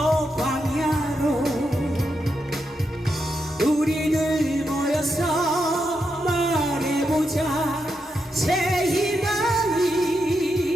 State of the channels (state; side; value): normal; both; correlation 0.84